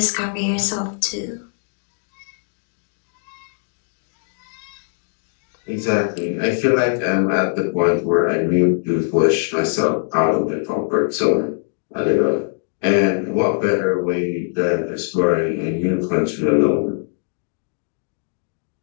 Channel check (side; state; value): right; silent; 65 dB below the other